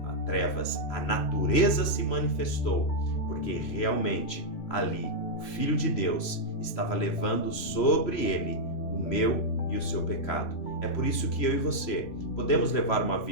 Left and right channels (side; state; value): right; late; 3.0 ms